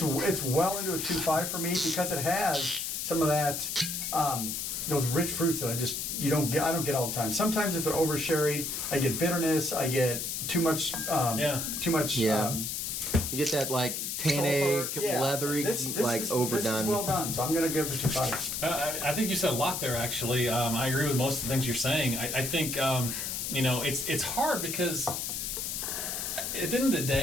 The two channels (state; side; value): noise; left; hiss, 3 dB below the sound